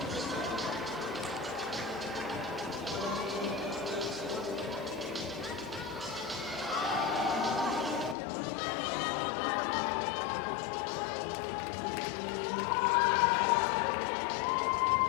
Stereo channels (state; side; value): drops out; right; at 8.2 s